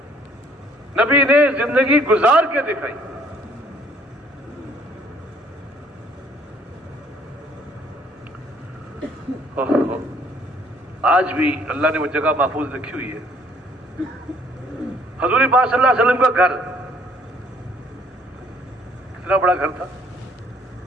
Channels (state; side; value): normal; both; correlation 0.61